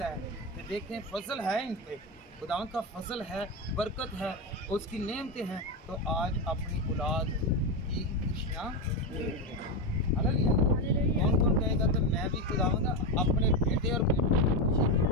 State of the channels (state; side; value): normal; both; correlation 0.12